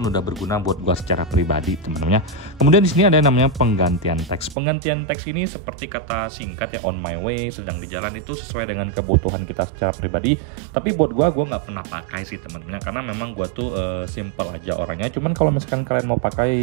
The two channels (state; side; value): drops out; left; at 4.5 s